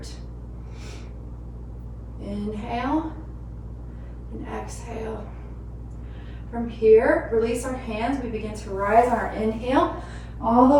Inhale and exhale. From here, release our hands. We begin to rise on our inhale, all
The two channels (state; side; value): identical; both; correlation 1.00